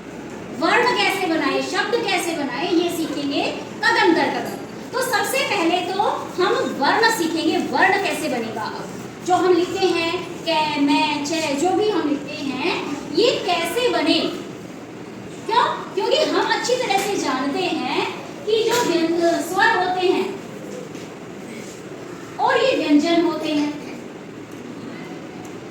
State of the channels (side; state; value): both; identical; correlation 1.00